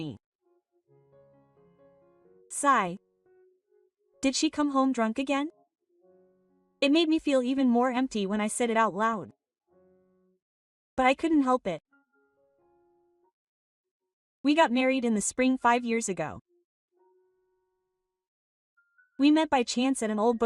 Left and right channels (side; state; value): both; identical; correlation 1.00